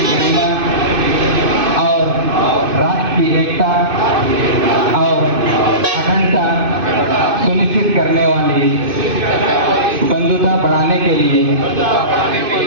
गरिमा और राष्ट्र की एकता और अखंडता सुनिश्चित करने वाली बंधुता बढ़ाने के लिए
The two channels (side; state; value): left; late; 2.5 ms